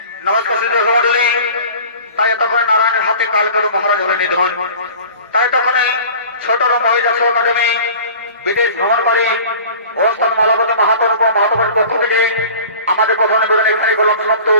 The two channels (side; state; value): both; inverted; correlation -0.42